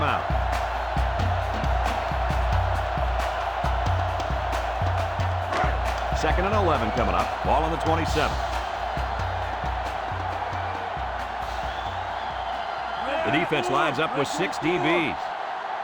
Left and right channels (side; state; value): both; identical; correlation 1.00